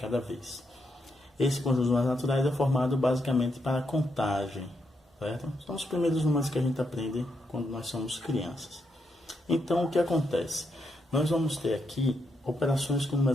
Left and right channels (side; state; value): both; normal; correlation 0.81